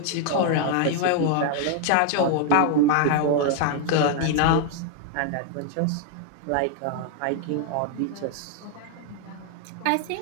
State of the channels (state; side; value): different; both; correlation 0.00